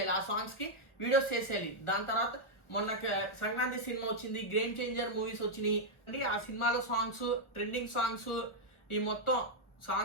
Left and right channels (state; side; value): late; right; 1.4 ms